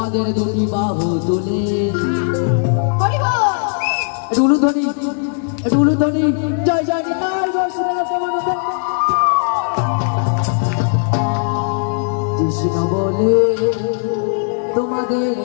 দুটি বাহু তুলে উলুধ্বনি উলুধ্বনি জয় জয় নিতাই কৃষ্ণ বলে তোমাদের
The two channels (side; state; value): right; silent; digital silence